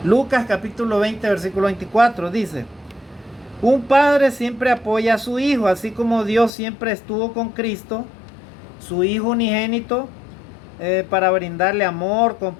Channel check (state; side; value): drops out; right; at 6.5 s